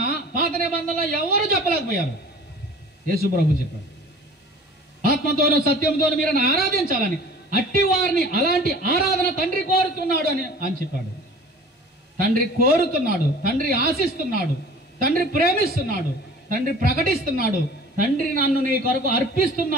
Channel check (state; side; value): normal; both; correlation 0.45